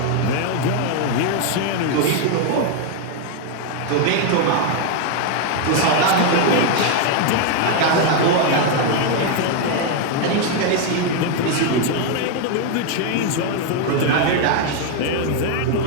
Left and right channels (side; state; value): both; different; correlation 0.01